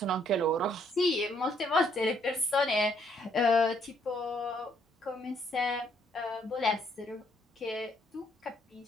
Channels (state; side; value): normal; both; correlation 0.69